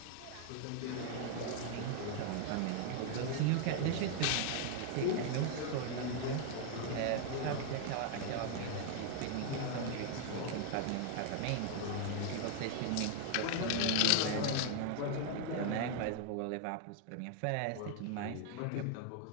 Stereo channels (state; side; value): different; both; correlation 0.00